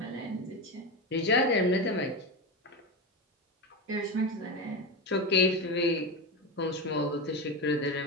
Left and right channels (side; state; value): both; normal; correlation 0.17